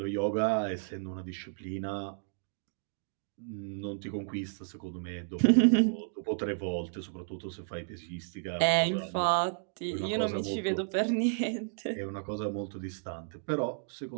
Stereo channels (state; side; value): silent; left; digital silence